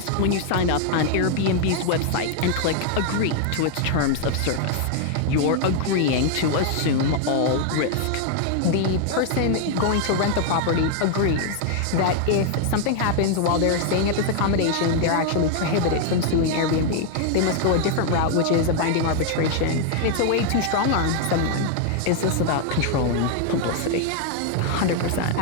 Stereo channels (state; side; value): different; both; correlation 0.00